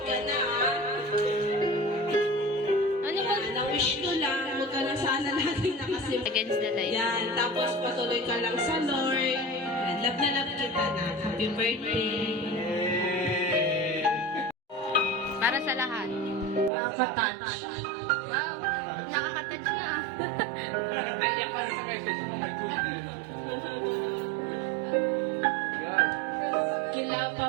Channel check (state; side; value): drops out; left; at 16.7 s